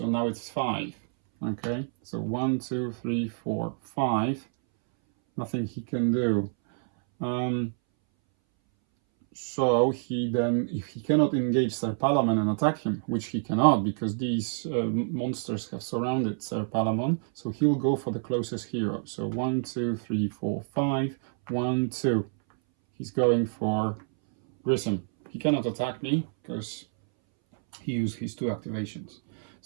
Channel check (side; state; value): left; silent; 59 dB below the other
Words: now it's 5. Okay, so 1, 2, 3, 4, 5. Nothing he can do. So he then, if he cannot engage Sir Palamon and attack him, which he cannot because these monsters have surrounded Sir Palamon, so he'll go for the closest hero. So 1, 2, 3, 4, 5, 1, 2. He's going for Grissom. He cannot attack me because he used his 2 activations.